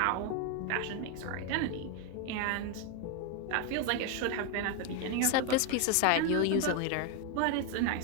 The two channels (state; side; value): different; both; correlation 0.01